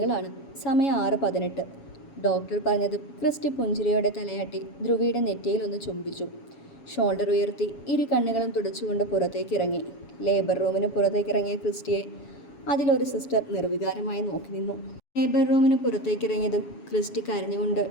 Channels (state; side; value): late; right; 7.2 ms